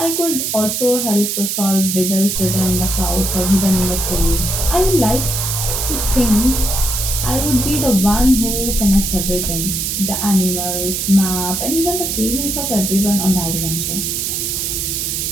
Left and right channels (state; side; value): noise; right; hiss, 1 dB below the sound